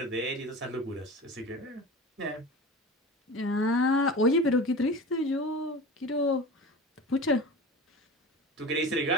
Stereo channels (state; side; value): normal; both; correlation 0.32